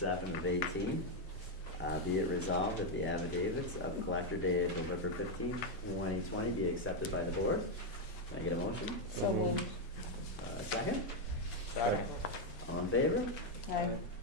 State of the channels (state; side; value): normal; both; correlation 0.02